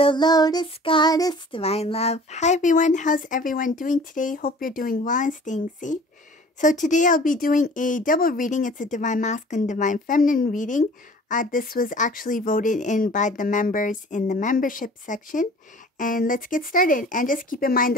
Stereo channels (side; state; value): both; normal; correlation 0.47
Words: Lotus Goddess Divine Love. Hi everyone, how's everyone doing today? Hope you're doing well and staying safe. So today I'll be doing a double reading. It's a Divine Masculine, Divine Feminine reading. This was actually voted in by the members in the membership section. And let's get started. And just keep in mind